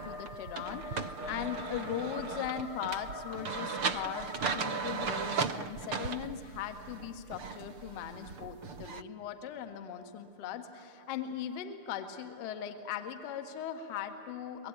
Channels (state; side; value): late; left; 6.8 ms